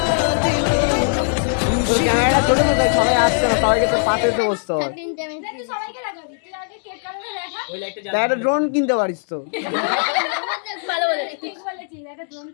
ক্যামেরাটা ছোট তো তাই সবাই আসছে না, সবাইকে তো পাশে এসে বসতে হয়। তুই সবাইকে লাগাবি তুই আগে কেক কাটাতে দেখা তাই একটা ড্রোন কিনতে পারিস তো। ভালো বলেছিস ঠিক বলেছিস একটা ড্রোন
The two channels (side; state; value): right; silent; digital silence